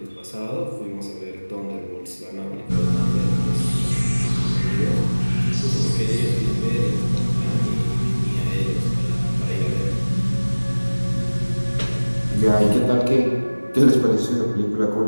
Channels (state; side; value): inverted; both; correlation -1.00